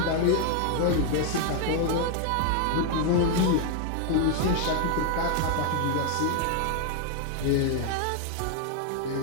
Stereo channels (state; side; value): different; both; correlation 0.00